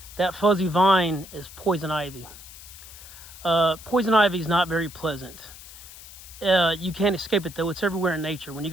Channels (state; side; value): noise; left; hiss, 17 dB below the sound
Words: that fuzzy vine is poison ivy. Poison ivy is not very pleasant. You can't escape it though, it's everywhere in nature. When you